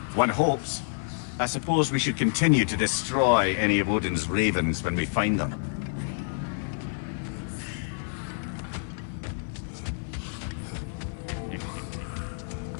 One hopes. I suppose we should continue to destroy any of Odin's ravens when we find them.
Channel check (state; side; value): silent; right; 57 dB below the other